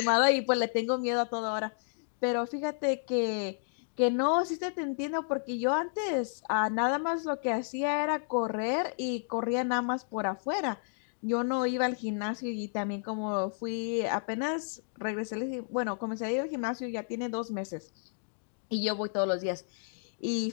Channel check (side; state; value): right; silent; digital silence